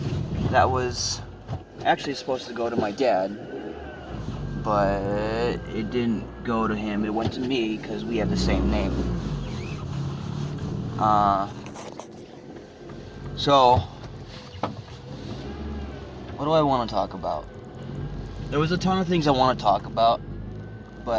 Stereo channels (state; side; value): identical; both; correlation 1.00